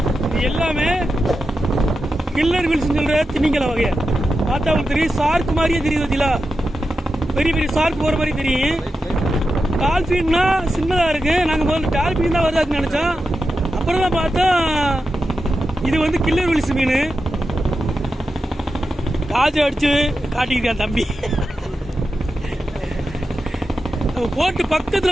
இது எல்லாமே கில்லர் வீல்ஸ் சொல்ற திமிங்கல வகைய பார்த்தா உங்களுக்கு தெரியும். சார்க் மாதிரியே தெரியுது பார்த்தீங்களா, பெரிய பெரிய சார்க் போற மாதிரி தெரியும். டால்பின்னா சின்னதா இருக்கு. நாங்க முதல்ல டால்பின் தான் வருதாக்குன்னு நினைச்சோம். அப்புறம் தான் பார்த்தா இது வந்து கில்லர் வீல்ஸ் மீன். காஜை அடிச்சு காட்டிக்கிட்டான் தம்பி. நம்ம போட்டு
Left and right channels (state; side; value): normal; both; correlation 0.90